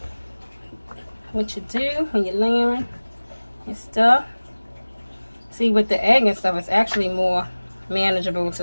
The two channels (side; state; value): both; inverted; correlation -1.00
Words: what you do when you're layering your stuff. See, with the egg and stuff, it's actually more manageable